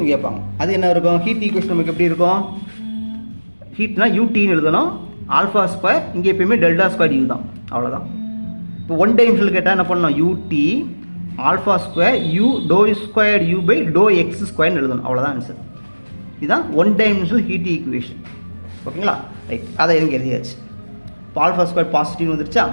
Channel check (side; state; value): both; inverted; correlation -1.00